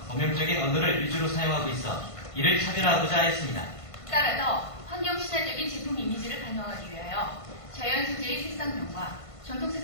범용적인 언어를 위주로 사용하고 있어 이를 차별화하고자 했습니다. 따라서 환경 친화적인 제품 이미지를 반영하기 위하여 자연 소재의 색상명과 전통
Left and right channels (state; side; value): late; right; 1.5 ms